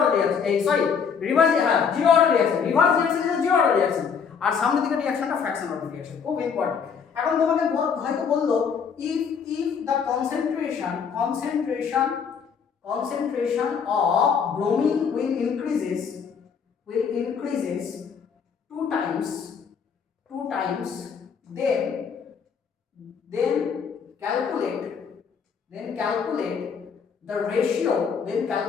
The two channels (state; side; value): quieter; right; 6.5 dB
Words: reaction, sorry reverse, হ্যাঁ zero order reaction, reverse reaction is the zero order reaction, আর সামনের দিকে রিঅ্যাকশনটা fraction order reaction, খুব ইম্পর্টেন্ট। এখন তোমাকে হয়তো বললো if the concentration of bromine will increases two times, then calculate